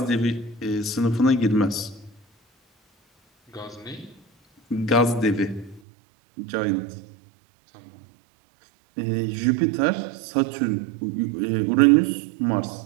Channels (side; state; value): left; drops out; at 5.8 s